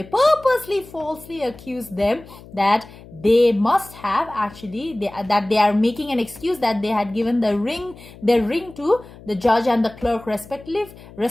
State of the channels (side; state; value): left; noise; hum, 20 dB below the sound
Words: purposely falsely accuse them that they must have actually, that they are making an excuse that they had given their ring to the judge and the clerk